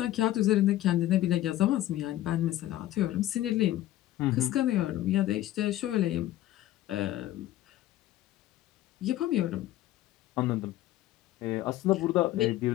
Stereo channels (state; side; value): quieter; right; 14.4 dB